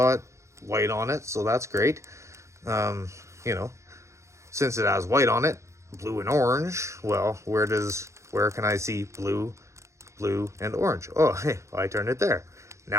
white on it, so that's great. You know, since it has white on it, blue and orange, well, where can I see blue, and orange? Oh, hey, I turned it there.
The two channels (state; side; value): late; left; 0.14 ms